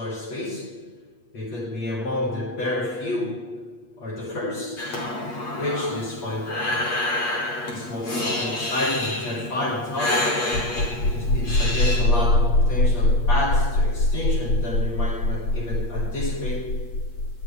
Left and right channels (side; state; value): right; late; 8.4 ms